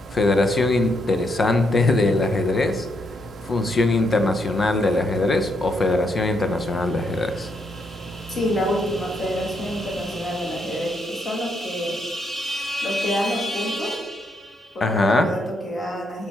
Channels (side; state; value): both; normal; correlation 0.77